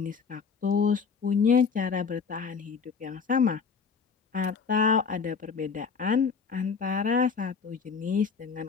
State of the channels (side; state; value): right; quieter; 5.6 dB